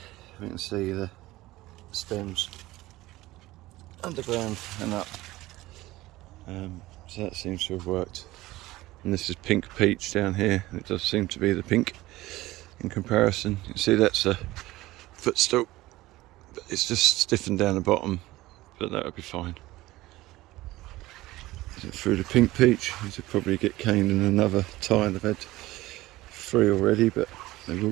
we can see the stems underground and up, so that seems to have worked. And this is pink peach down here, and it does seem to be the pink in comparison. You can see that's a footstool, but it's just stiffened down the bottom, but that would be fine. Through the pink peach, these will probably get caned in another tile. I've had 3 already, but they will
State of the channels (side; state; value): left; quieter; 17.9 dB